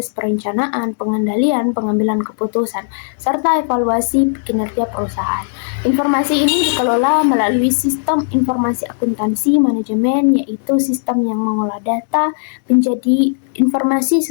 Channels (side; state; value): right; silent; digital silence